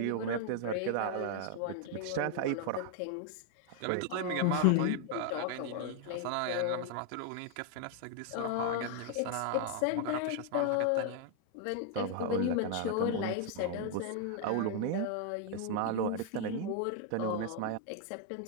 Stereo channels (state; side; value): different; both; correlation 0.00